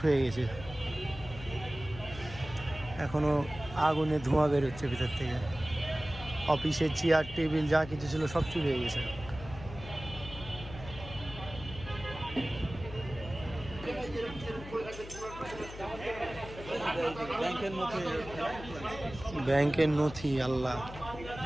হয়ে গেছে। এখনো আগুনে ধোঁয়া বেরোচ্ছে ভিতর থেকে। অফিসের চেয়ার টেবিল যা কিছু ছিল সব চুরি হয়ে গেছে। ব্যাংকের নথি, আল্লাহ,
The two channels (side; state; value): left; noise; hum, 13 dB below the sound